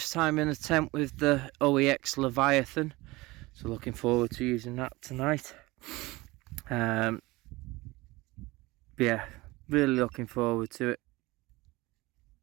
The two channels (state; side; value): quieter; left; 21.2 dB